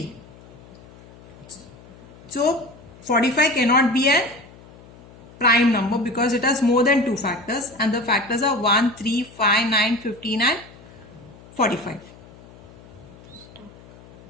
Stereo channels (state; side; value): noise; left; hum, 22 dB below the sound